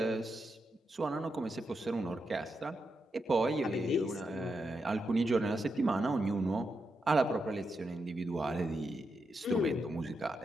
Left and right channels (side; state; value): both; normal; correlation 0.85